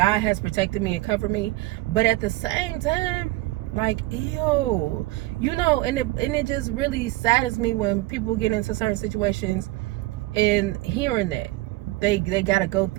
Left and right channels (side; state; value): left; quieter; 19.2 dB